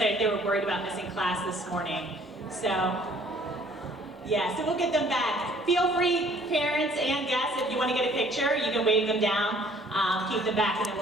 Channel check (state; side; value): normal; both; correlation 0.57